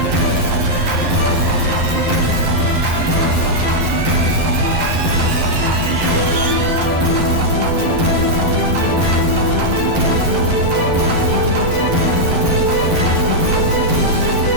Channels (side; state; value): left; late; 12 ms